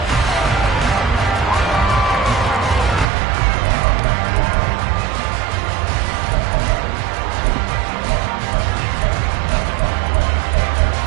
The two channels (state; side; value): drops out; left; at 3.1 s